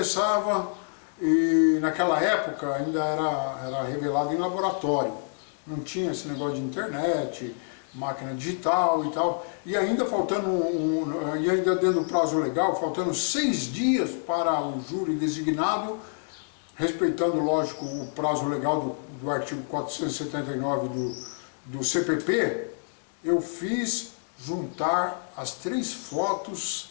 e naquela época ainda era revelado em laboratório, não tinha esse negócio de internet, máquina digital e tal, e ainda faltando e ainda dentro do prazo legal, faltando 6 dias para o júri designado, respeitando, lógico, o prazo legal do artigo 479 do CPP, eu fiz juntar as 3 fotos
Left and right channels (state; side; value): silent; right; digital silence